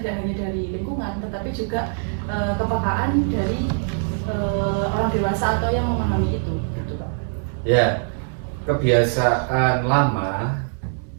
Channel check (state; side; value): silent; left; 64 dB below the other